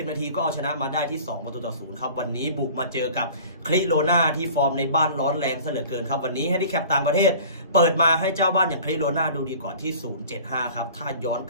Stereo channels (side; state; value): both; inverted; correlation -0.44